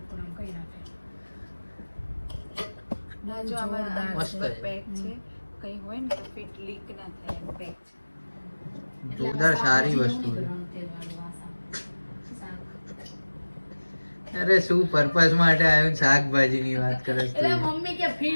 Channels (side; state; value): both; inverted; correlation -1.00